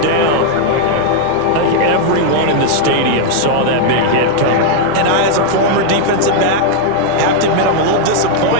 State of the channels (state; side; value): different; both; correlation 0.00